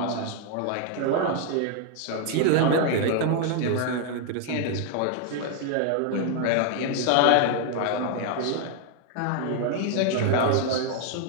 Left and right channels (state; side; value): different; both; correlation 0.00